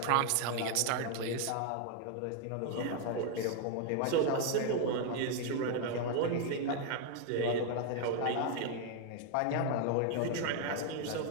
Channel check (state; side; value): different; both; correlation 0.00